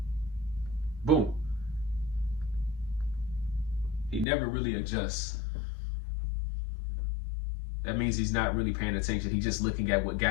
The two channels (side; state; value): right; drops out; at 4.2 s